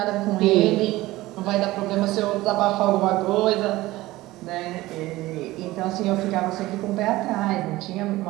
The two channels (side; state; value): left; quieter; 18.0 dB